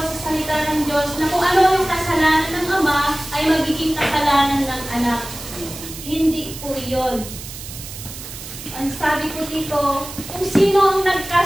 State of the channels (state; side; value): noise; right; hiss, 12 dB below the sound